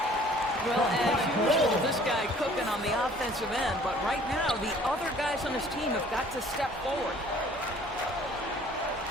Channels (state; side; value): normal; both; correlation 0.54